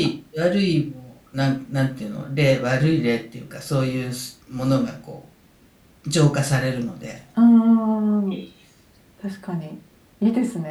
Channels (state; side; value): identical; both; correlation 1.00